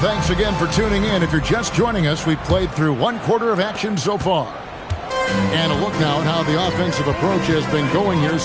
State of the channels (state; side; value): identical; both; correlation 1.00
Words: again for tuning in. If you're just joining us, we've played through 1 quarter of action so far. And a look now at how the offensive approach has been going here